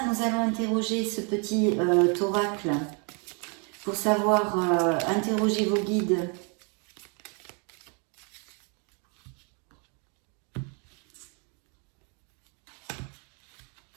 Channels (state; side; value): quieter; left; 35.9 dB